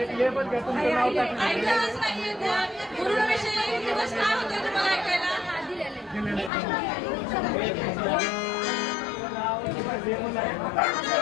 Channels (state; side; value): drops out; right; at 6.5 s